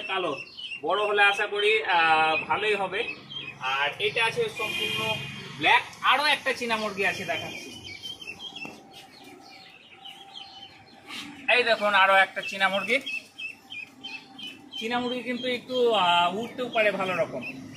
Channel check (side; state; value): both; identical; correlation 1.00